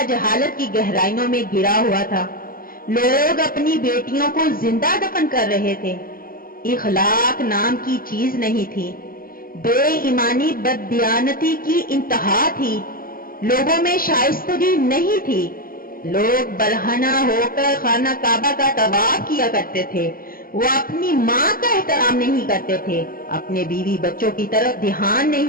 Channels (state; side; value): late; right; 0.42 ms